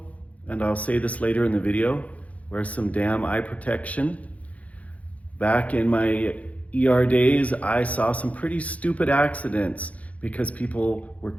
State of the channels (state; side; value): late; right; 0.067 ms